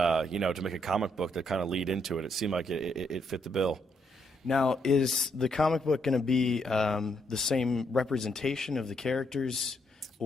make a comic book that kind of lead into it. It seemed like it fit the bill. Now, is the comic book going to be the same representation of the characters,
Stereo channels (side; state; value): both; normal; correlation 0.75